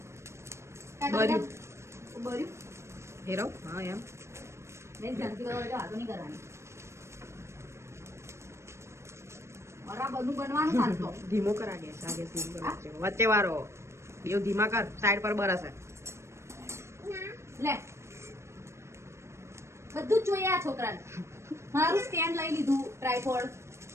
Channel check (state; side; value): late; left; 0.13 ms